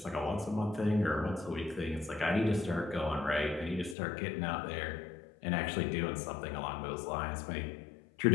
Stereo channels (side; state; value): right; drops out; at 4.0 s